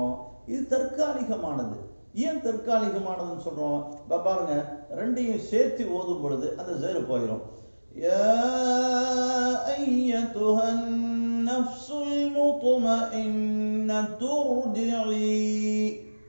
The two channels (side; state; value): both; inverted; correlation -1.00